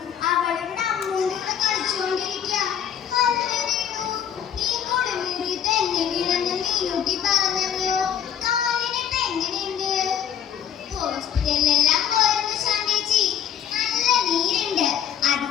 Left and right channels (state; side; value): quieter; right; 9.2 dB